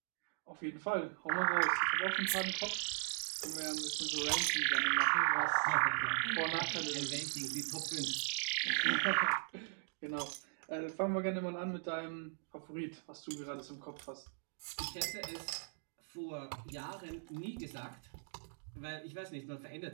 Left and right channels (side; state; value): left; silent; digital silence